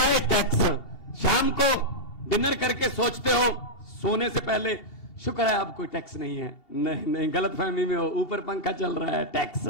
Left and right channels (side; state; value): right; late; 2.7 ms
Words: टैक्स, शाम को डिनर करके सोचते हो सोने से पहले शुक्र है अब कोई टैक्स नहीं है, नहीं गलतफहमी में हो, ऊपर पंखा चल रहा है टैक्स।